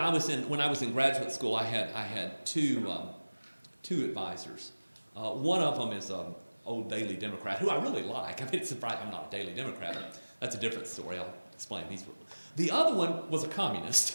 was in graduate school, I had two advisors. One of them is old Daily Democrat, who I really like. I mean, it's surprising I'm not a Daily Democrat. That's a different story. I'll explain these. The other one was a communist,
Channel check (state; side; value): inverted; both; correlation -1.00